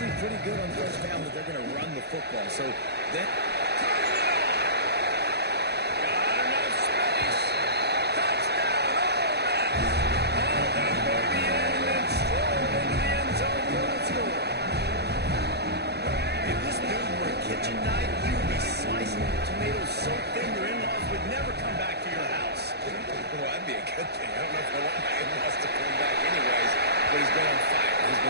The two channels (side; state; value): left; late; 0.48 ms